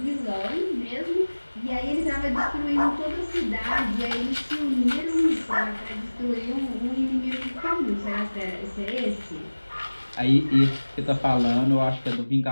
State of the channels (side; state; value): both; inverted; correlation -1.00